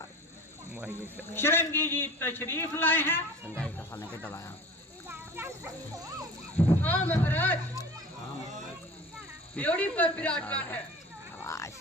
शिरंगी जी तशरीफ लाए हैं? संगाई का खाने के दबाया। हाँ महाराज, त्योड़ी पर विराजमान है। शाबाश।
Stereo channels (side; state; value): both; normal; correlation 0.40